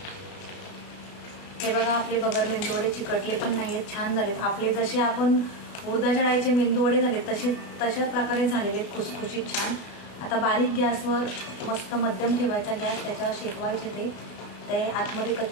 हे बघा आपले बगर मेंदू वडे चिकटले पण नाही आहेत, छान झालेत आपले. जसे आपण उडदाच्या डाळीचे मेंदू वडे झाले तशा प्रकारे झालेले आहेत, खुसखुशीत छान. आता बारीक गॅसवर मस्त मध्यम ठेवायचा गॅस, त्याच्यावर शेकवायचे ते आतमध्ये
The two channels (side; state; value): right; late; 32 ms